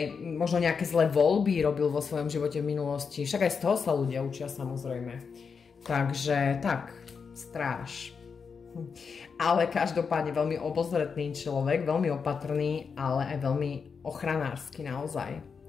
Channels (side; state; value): right; quieter; 5.7 dB